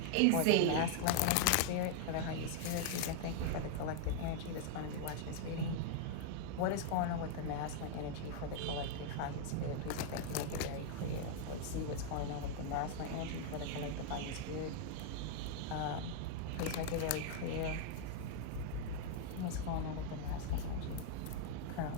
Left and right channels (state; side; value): different; both; correlation 0.00